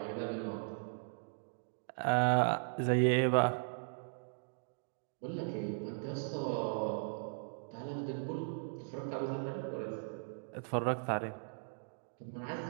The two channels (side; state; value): left; silent; digital silence